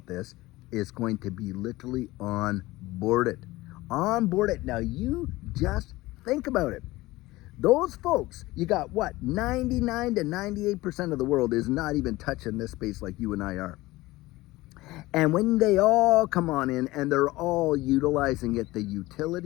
this is going to be literally onboarded. Now, you just think about it. Those folks, you got 99 to 98% of the world is not even touching this space like you and I are. And when they all come on in and they're all utilizing it, the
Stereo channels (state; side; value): quieter; right; 19.1 dB